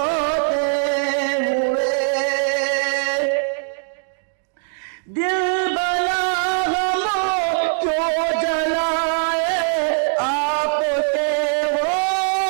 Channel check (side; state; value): left; silent; digital silence